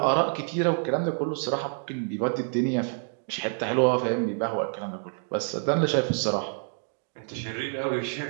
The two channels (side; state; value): left; silent; 58 dB below the other